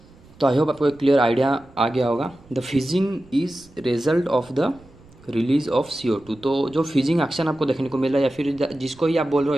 तो आई होप आपको एक क्लियर आइडिया आ गया होगा। The fizzing is result of the release of CO2, तो जो फिजिंग एक्शन आपको देखने को मिल रहा है या फिर जिसको ही आप बोल रहे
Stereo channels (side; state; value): right; noise; rumble, 25 dB below the sound